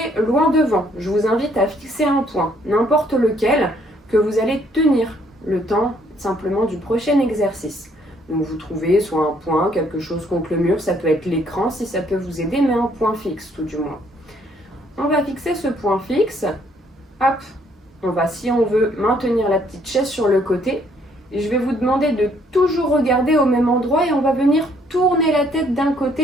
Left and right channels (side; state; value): both; normal; correlation 0.66